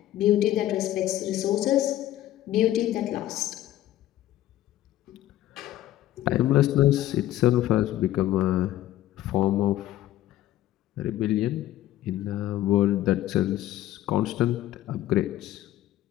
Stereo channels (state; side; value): quieter; right; 13.9 dB